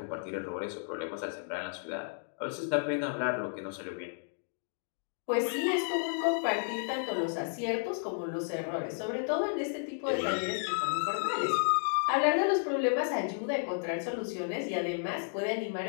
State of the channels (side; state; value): right; silent; digital silence